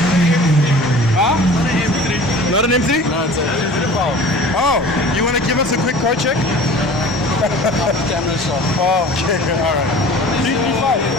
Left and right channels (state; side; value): normal; both; correlation 0.43